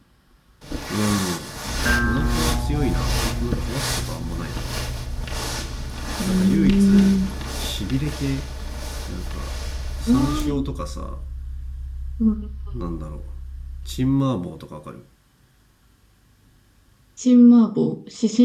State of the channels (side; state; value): both; identical; correlation 1.00